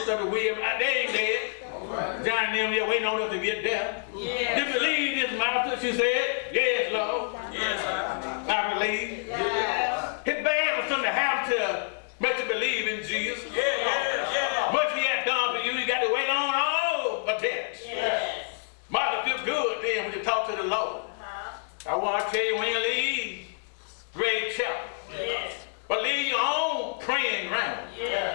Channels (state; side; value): silent; right; digital silence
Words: William. They ain't dead. John them there waiting on us to get there. Do you believe this, Martha? She said, yes, Lord. Yes, sir. I believe. It's bad for something to happen to make you believe in Jesus. Much he has done for you, you got to wait on all a test. Martha feel good then when you talk to the Lord. I want to tell you when you leave Great Chapel, but leave your own praying ground.